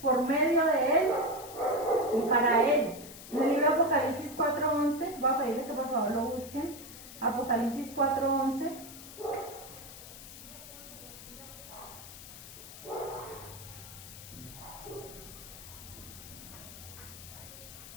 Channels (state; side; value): noise; left; hiss, 14 dB below the sound